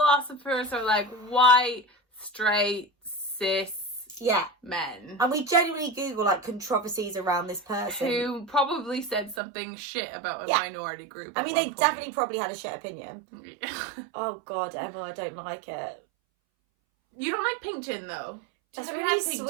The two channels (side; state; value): left; drops out; at 9.4 s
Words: are like white, straight, cis men. And we genuinely Google like controversies around this person. Who probably said something shit about a minority group. I mean, they definitely probably had a shit opinion. Oh God, Emma, I don't like it. You don't like pink gin though? That's really